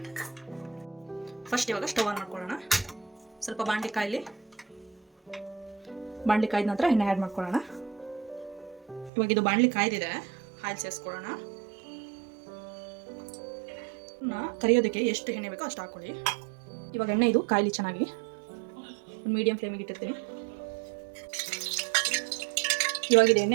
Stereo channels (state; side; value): drops out; left; at 9.1 s